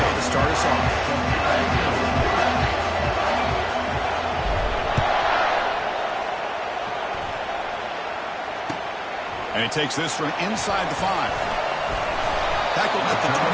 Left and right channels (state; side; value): identical; both; correlation 1.00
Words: to start us off. And he takes this from inside the 5. Tackled at the